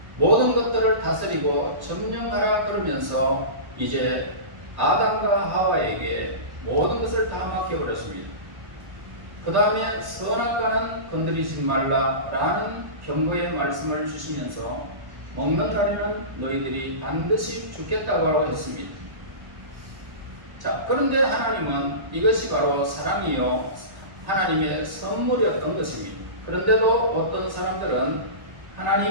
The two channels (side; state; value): left; late; 1.1 ms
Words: 모든 것들을 다스리고 점령하라 그러면서 이제 아담과 하와에게 모든 것을 다 맡겨버렸습니다. 그 다음에 선악과는 건드리지 말라라는 경고의 말씀을 주시면서 먹는 날에는 너희들이 반드시 죽겠다고 했습니다. 자, 그런데 하나님은 이것이 바로 사랑이요 하나님의 선물이었던 것입니다. 그런데도 어떤 사람들은